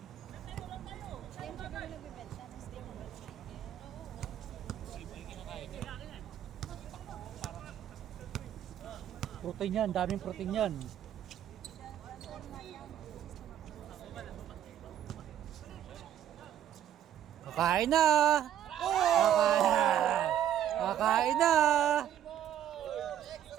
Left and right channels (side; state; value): left; quieter; 10.7 dB